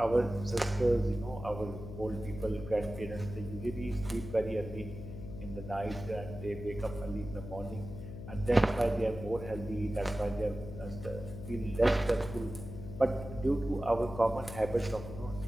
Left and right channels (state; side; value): noise; left; hum, 10 dB below the sound